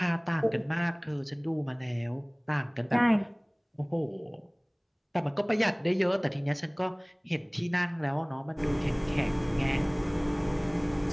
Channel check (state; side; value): identical; both; correlation 1.00